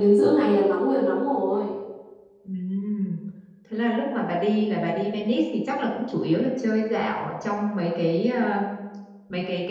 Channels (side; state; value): both; identical; correlation 1.00